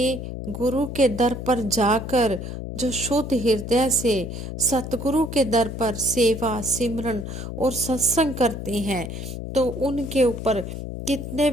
गुरु के दर पर जाकर जो शुद्ध हृदय से सतगुरु के दर पर सेवा सिमरन और सत्संग करते हैं, तो उनके ऊपर कितने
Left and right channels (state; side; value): noise; left; hum, 7 dB below the sound